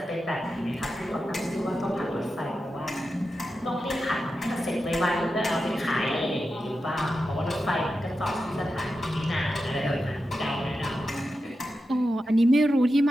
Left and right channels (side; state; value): both; normal; correlation 0.90